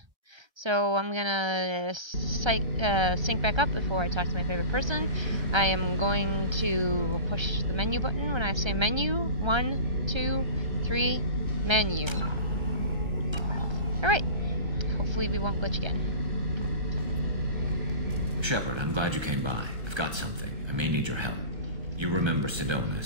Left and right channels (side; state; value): left; late; 1.3 ms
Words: So I'm gonna sync back up before I talk to my favorite person. I am going to push the menu button when I say menu. 1, 2, 3, menu. Alright. Hopefully we won't glitch again. Shepard, I'm glad you came by. I've got something. I may need your help. You remember